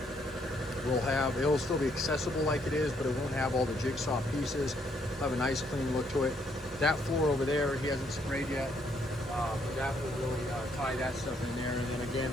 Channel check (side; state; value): both; normal; correlation 0.71